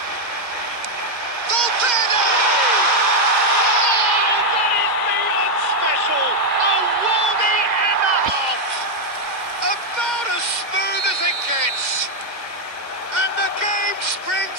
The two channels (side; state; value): left; late; 2.0 ms